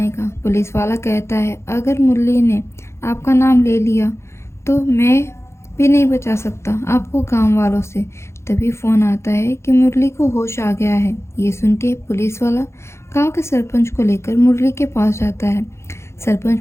का। पुलिस वाला कहता है अगर मुरली ने आपका नाम ले लिया तो मैं भी नहीं बचा सकता आपको गांव वालों से। तभी फ़ोन आता है कि मुरली को होश आ गया है। ये सुन के पुलिस वाला गांव के सरपंच को लेकर मुरली के पास जाता है। सरपंच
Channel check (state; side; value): late; right; 0.13 ms